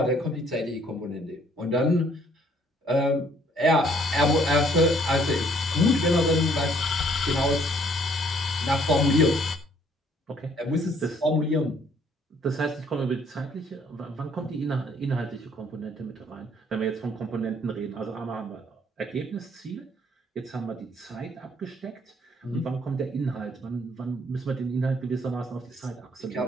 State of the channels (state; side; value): normal; both; correlation 0.63